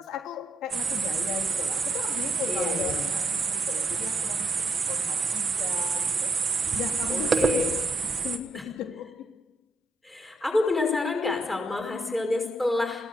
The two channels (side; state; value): both; normal; correlation 0.75